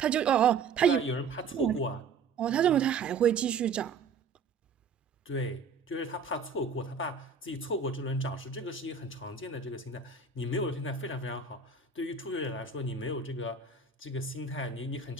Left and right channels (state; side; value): quieter; left; 5.1 dB